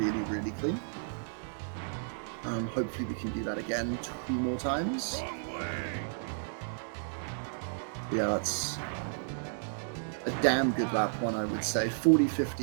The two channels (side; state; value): left; silent; digital silence